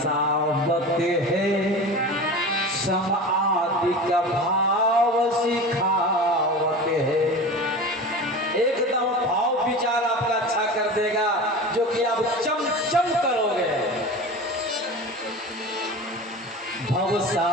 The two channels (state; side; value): normal; both; correlation 0.32